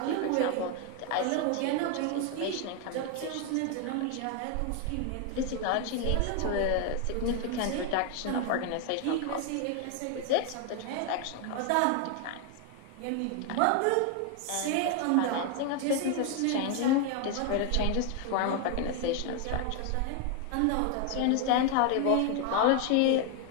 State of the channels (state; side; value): different; both; correlation 0.01